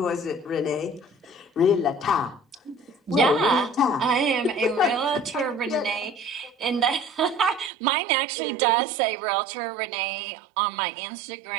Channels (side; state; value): left; drops out; at 7.7 s